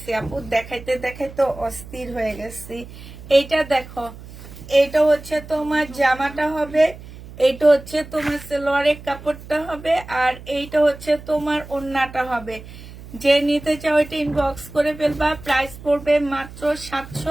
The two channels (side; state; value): right; noise; hum, 16 dB below the sound